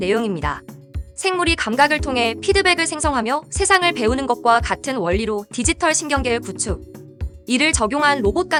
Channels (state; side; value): identical; both; correlation 1.00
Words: 생물이 감각을 통해 피드백을 생성하며 세상을 배우는 것과 같은 원리로 디지털 신경계를 구축. 이를 적용한 로봇